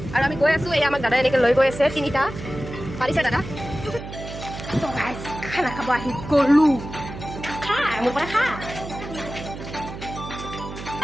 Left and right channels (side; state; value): right; noise; hum, 11 dB below the sound